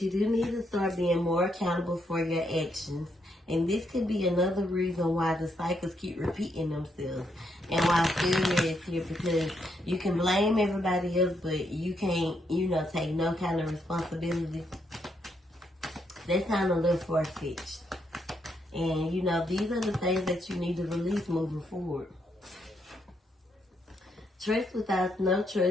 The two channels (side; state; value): both; normal; correlation 0.77